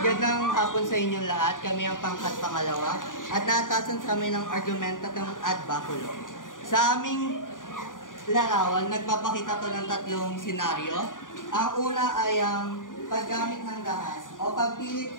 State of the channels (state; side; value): late; right; 0.88 ms